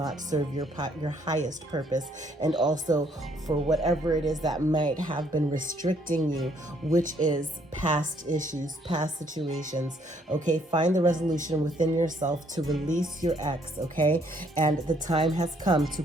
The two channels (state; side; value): normal; both; correlation 0.67